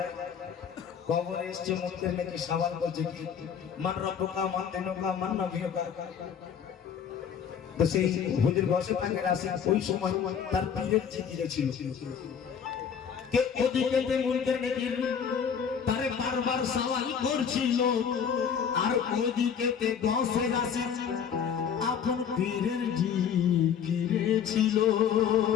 কবরে এসে মুনকার নাকির সওয়াল করছে কি মান রব্বুকা মান দিনুকা মান নবিয়ুকা। তো সেই হুজুর গৌসে পাকের আসি ওই সময় তার পীরের জিকিরে ছিল কে ওদিকে মুনকার নাকির তারে বারবার সওয়াল করছিল, আর ওদিকে গৌসের আসি আপন পীরের জিকিরে ছিল।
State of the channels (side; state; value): right; quieter; 7.5 dB